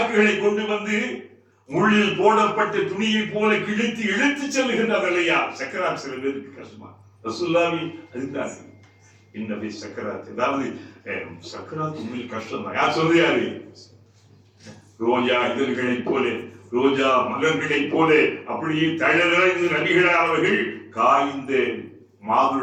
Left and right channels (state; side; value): identical; both; correlation 1.00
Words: கொண்டு வந்து முள்ளில் போடப்பட்ட துணியை போல கிழித்து இழுத்து செல்லுகின்றது இல்லையா? சக்கராத் சில பேருக்கு கஷ்டமா. ரசூலுல்லாஹி அதுதான் இன்னபி சக்கராத், அதாவது சக்கராத் உண்மையில் கஷ்டம் தான். யார் சொல்றாரு? ரோஜா இதழ்களை போல, ரோஜா மலர்களை போல அப்படியே தழலிழந்து நபிகள் அவர்கள் காய்ந்த